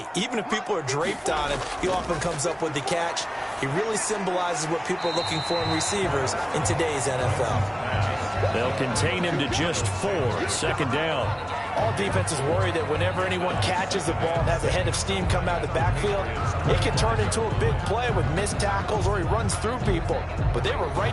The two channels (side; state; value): both; identical; correlation 1.00